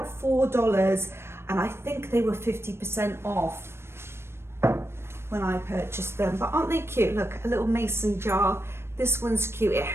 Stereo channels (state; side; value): late; left; 0.12 ms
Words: $4, and I think they were 50% off when I purchased them. But aren't they cute? Look, a little mason jar. This one's cute. It